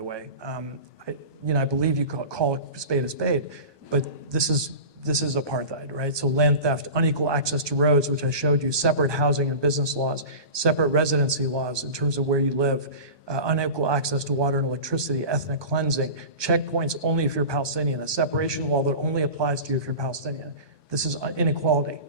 way. I believe you call a spade, but this is apartheid, right? So land theft, unequal access to roads, which I showed you, separate housing and business laws, separate residency laws in terms of where you live, unequal access to water and electricity, ethnic cleansing, checkpoints only if you're Palestinian, a separation wall that only applies to you if you're Palestinian. This is inequality.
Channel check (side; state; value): left; late; 1.2 ms